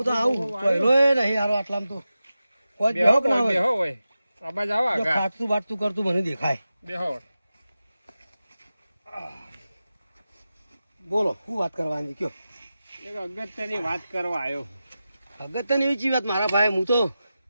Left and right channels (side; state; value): both; inverted; correlation -0.93